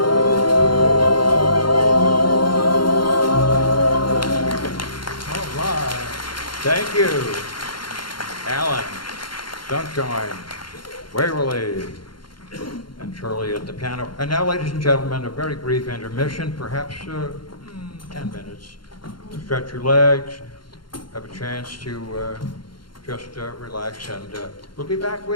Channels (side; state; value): right; late; 0.72 ms